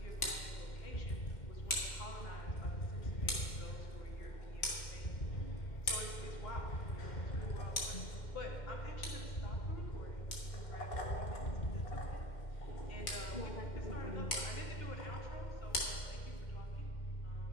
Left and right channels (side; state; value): right; late; 2.1 ms